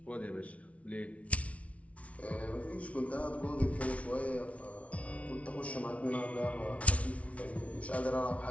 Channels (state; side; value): late; right; 0.065 ms